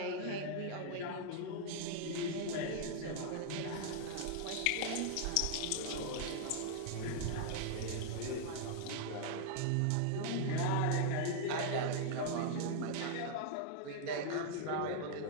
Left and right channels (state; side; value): different; both; correlation -0.01